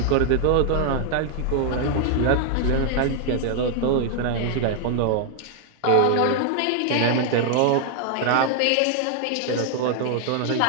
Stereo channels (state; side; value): different; both; correlation 0.00